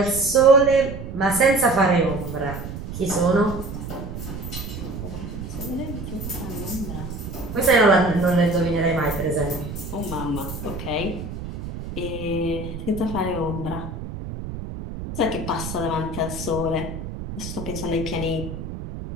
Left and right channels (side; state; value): right; noise; rumble, 8 dB below the sound